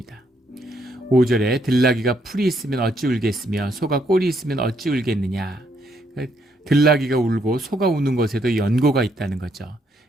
5절에 들나귀가 풀이 있으면 어찌 울겠으며 소가 꼴이 있으면 어찌 울겠느냐. 들나귀가 울고 소가 우는 것에도 연고가 있다는 거죠.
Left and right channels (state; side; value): normal; both; correlation 0.73